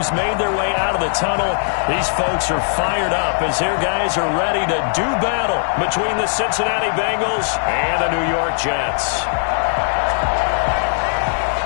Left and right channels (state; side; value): silent; right; 67 dB below the other